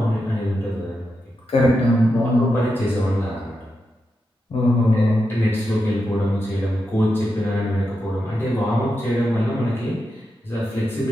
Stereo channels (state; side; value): normal; both; correlation 0.87